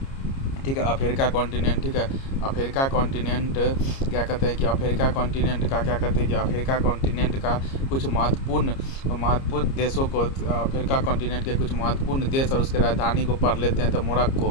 ठीक है, अफ्रीका कॉन्टिनेंट, ठीक है, अफ्रीका कॉन्टिनेंट क्या कहते हैं कि अफ्रीका कॉन्टिनेंट का क्या कहते हैं कि अफ्रीका कॉन्टिनेंट का कुछ महत्वपूर्ण देशों को, अफ्रीका कॉन्टिनेंट के कुछ महत्वपूर्ण देश और उसके राजधानी को पढ़ लेते हैं। तो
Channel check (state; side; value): late; right; 30 ms